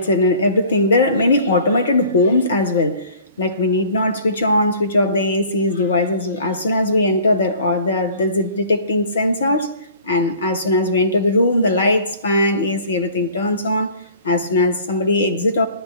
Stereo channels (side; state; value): both; inverted; correlation -0.48